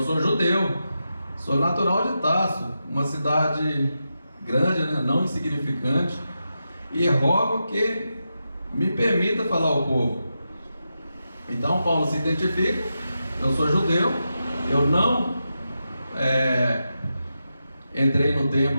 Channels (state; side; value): inverted; both; correlation -0.88